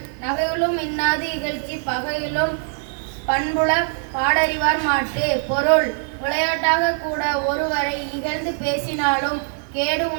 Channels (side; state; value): left; silent; 64 dB below the other